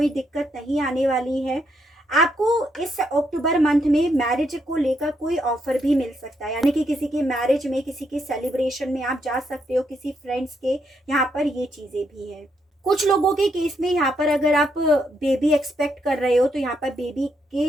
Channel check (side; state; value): both; normal; correlation 0.77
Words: दिक्कत नहीं आने वाली है। आपको इस अक्टूबर मंथ में मैरिज को लेकर कोई ऑफर भी मिल सकता है, यानी कि किसी के मैरिज में, किसी के सेलिब्रेशन में आप जा सकते हो, किसी फ्रेंड्स के, यहाँ पर ये चीज़ें भी हैं। कुछ लोगों के केस में यहाँ पर अगर आप बेबी एक्सपेक्ट कर रहे हो तो यहाँ पर बेबी